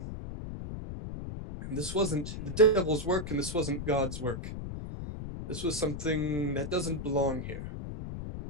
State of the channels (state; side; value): noise; left; rumble, 7 dB below the sound